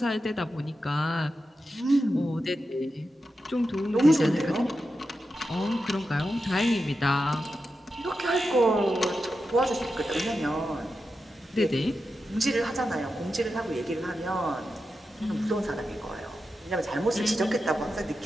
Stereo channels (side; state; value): both; normal; correlation 0.90